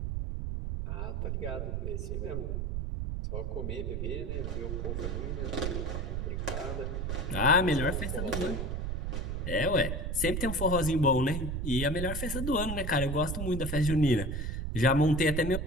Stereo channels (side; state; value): right; noise; rumble, 2 dB below the sound